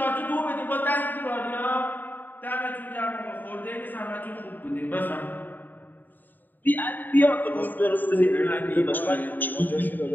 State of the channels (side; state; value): right; late; 0.089 ms